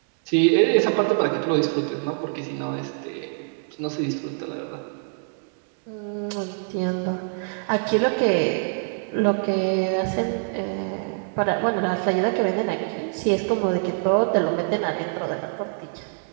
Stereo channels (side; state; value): left; silent; 62 dB below the other